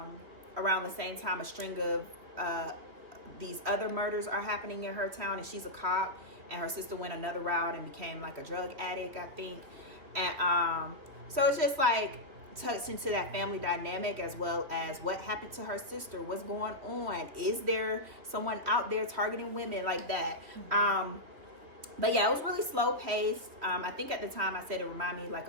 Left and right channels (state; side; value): late; left; 3.3 ms